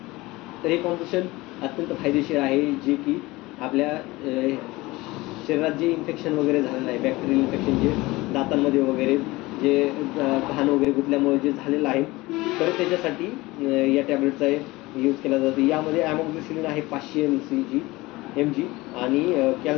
तर हे कॉम्पोजिशन अत्यंत फायदेशीर आहे, जे की आपल्या शरीरात जे इन्फेक्शन वगैरे झालेलं आहे, बॅक्टेरियल इन्फेक्शन जे दातांमध्ये वगैरे जे घाण वगैरे गुंतल्यामुळे जे झालेलं आहे, तर त्याच्यासाठी या टॅबलेटचा यूज केला जातो. यामध्ये ॲमोक्सिसिलिन आहे 500 mg आणि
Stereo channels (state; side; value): quieter; right; 20.7 dB